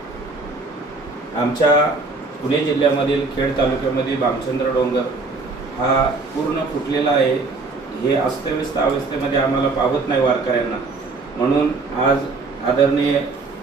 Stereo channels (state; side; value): quieter; left; 3.7 dB